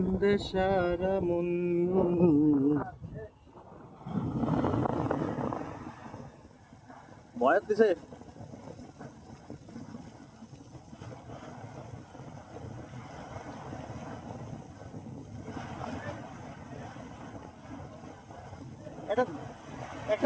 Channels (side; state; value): both; identical; correlation 1.00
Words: সারা মন। বয়াত দিছে একটা